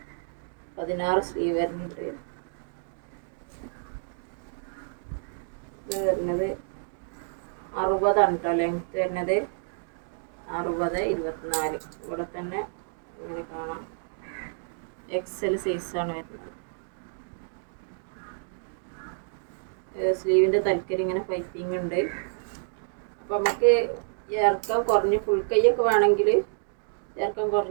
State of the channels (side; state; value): left; silent; digital silence